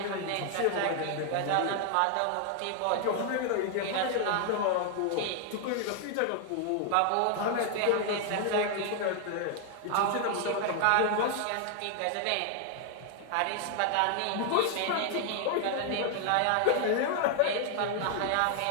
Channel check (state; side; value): different; both; correlation 0.00